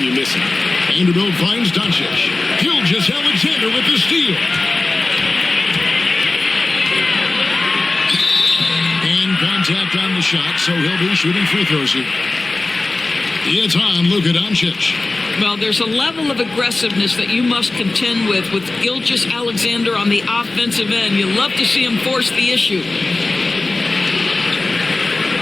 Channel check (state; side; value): quieter; right; 3.2 dB